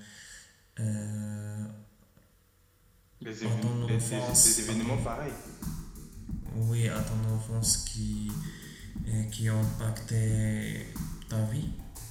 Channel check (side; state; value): both; identical; correlation 1.00